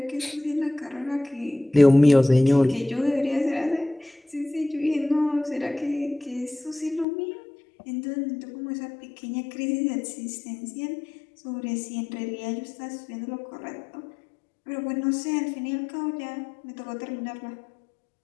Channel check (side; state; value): right; drops out; at 7.1 s